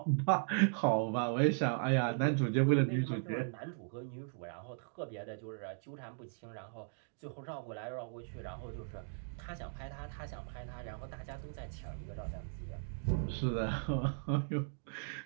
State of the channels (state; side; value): silent; left; digital silence